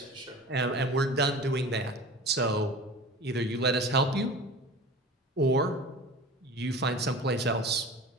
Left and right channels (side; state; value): both; normal; correlation 0.37